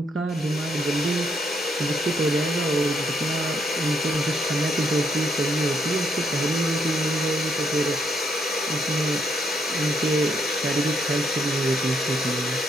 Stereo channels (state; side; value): normal; both; correlation 0.73